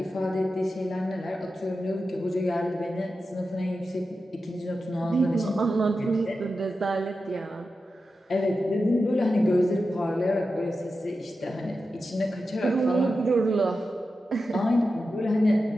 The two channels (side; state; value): both; normal; correlation 0.91